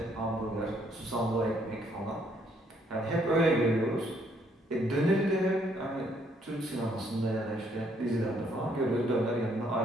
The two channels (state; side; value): normal; both; correlation 0.68